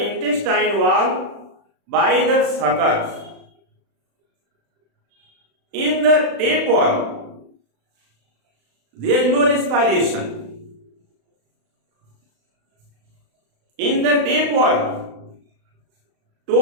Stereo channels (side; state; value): left; late; 35 ms